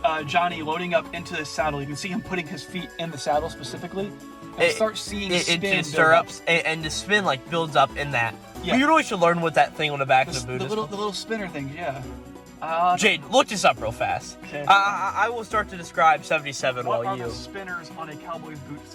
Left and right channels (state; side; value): identical; both; correlation 1.00